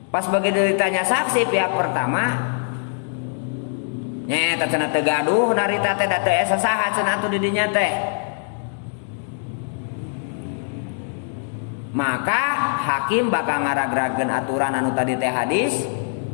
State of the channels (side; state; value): right; silent; digital silence